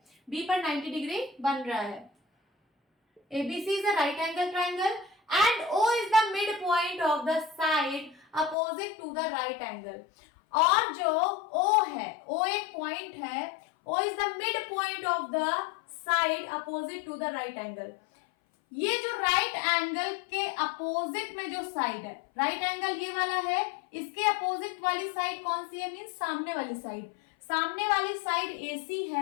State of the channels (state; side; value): drops out; right; at 8.6 s